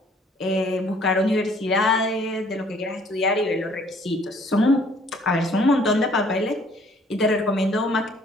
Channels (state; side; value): normal; both; correlation 0.59